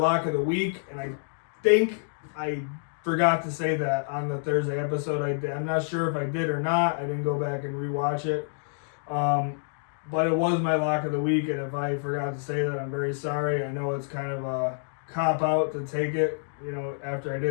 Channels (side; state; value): right; silent; digital silence